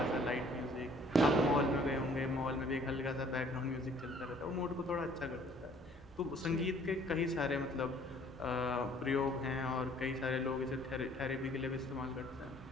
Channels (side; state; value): both; normal; correlation 0.58